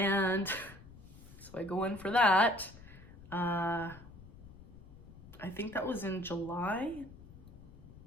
so I go in for that. I think that was in July.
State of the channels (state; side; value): noise; left; rumble, 18 dB below the sound